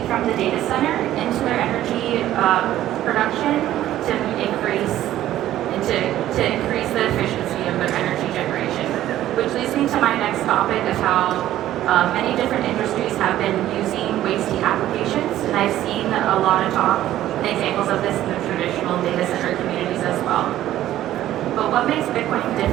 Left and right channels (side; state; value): left; quieter; 13.3 dB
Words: from the data center into their energy production to increase the efficiency of their energy generation. Which leads me to my next topic of how many different industries have been using waste heat applications, and I've seen a lot of talk and examples of this in the traditional data center communities as well. But what makes Bitcoin